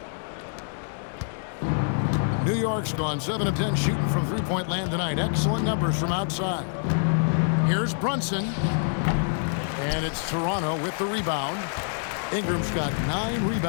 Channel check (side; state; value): right; silent; digital silence